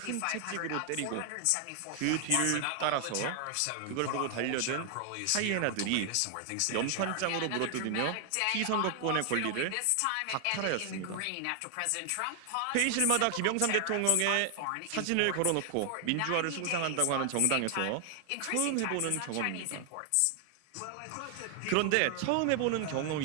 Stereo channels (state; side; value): different; both; correlation 0.00